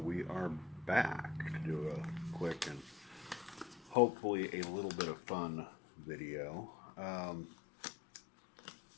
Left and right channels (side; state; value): right; drops out; at 4.0 s